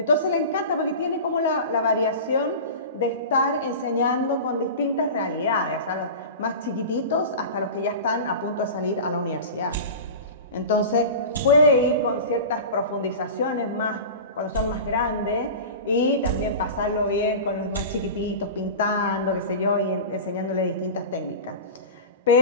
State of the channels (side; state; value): both; inverted; correlation -0.31